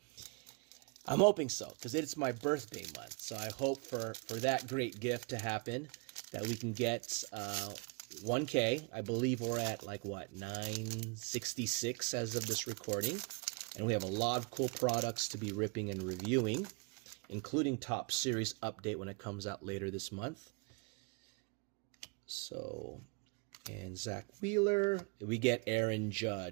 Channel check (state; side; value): quieter; left; 33.4 dB